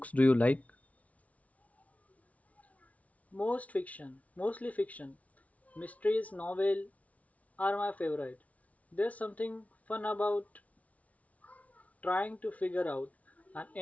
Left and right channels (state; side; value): late; right; 0.068 ms